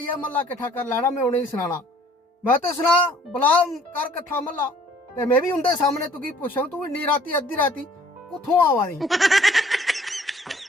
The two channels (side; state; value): both; normal; correlation 0.57